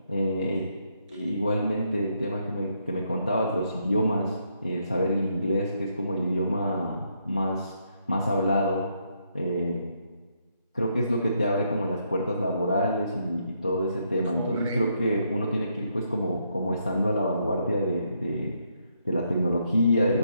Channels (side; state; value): both; inverted; correlation -0.76